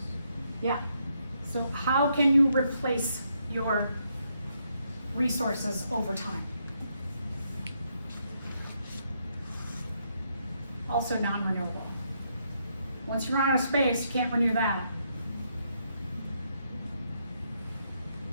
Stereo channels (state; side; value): inverted; both; correlation -0.77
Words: Yeah. So how can you replace your resources over time? Also non-renewable. Once you run out of space, you can't renew that.